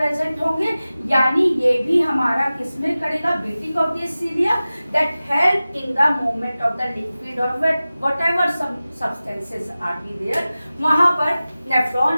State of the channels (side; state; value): both; inverted; correlation -0.96